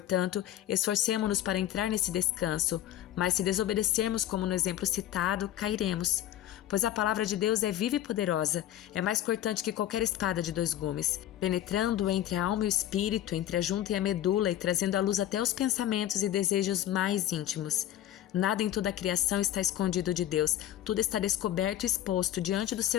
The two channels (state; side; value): quieter; right; 12.4 dB